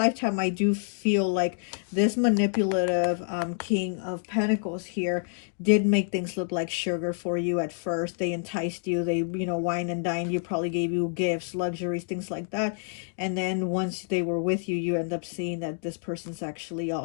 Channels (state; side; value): silent; right; digital silence